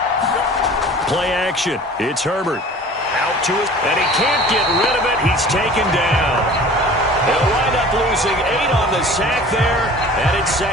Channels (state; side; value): normal; both; correlation 0.44